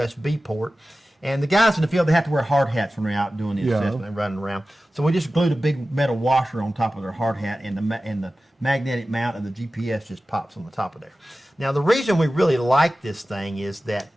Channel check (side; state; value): both; normal; correlation 0.95